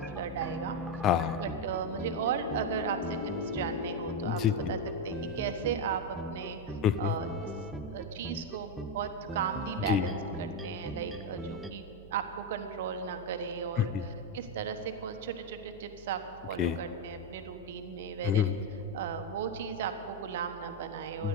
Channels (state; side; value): noise; right; hum, 19 dB below the sound